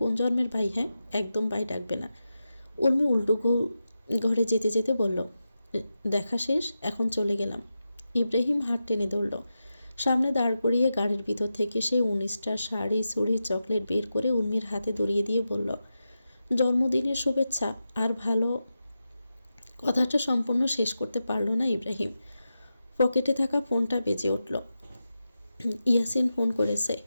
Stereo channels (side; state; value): both; inverted; correlation -0.90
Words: জন্মের ভাই? হ্যাঁ, একদম ভাই ডাকবে না। উর্মি উল্টো ঘরে যেতে যেতে বলল, দেখা শেষ, এখন চলে গেলাম। ইব্রাহিম হাত টেনে ধরল। সামনে দাঁড় করিয়ে গাড়ির ভিতর থেকে সে 19টা শাড়ি চুড়ি চকলেট বের করে উর্মির হাতে ধরিয়ে দিয়ে বলল, জন্মদিনের শুভেচ্ছা। আর ভালো কথাটা সম্পূর্ণ শেষ করতে পারল না ইব্রাহিম। পকেটে থাকা ফোনটা বেজে উঠল। ইয়াসিন ফোন করেছে।